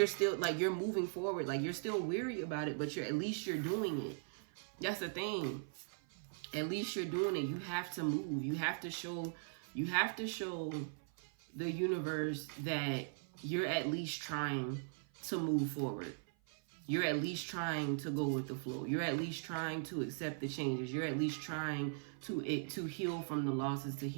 still like, you're moving forward. Like you're still weary about it, but at least you're doing it. That's the thing. At least you're doing it. You have to move. You have to show the universe that you're at least trying to move forward. You're at least trying to go with the flow. You're at least trying to accept the changes. You're at least trying to heal from the losses, to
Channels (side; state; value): left; silent; 51 dB below the other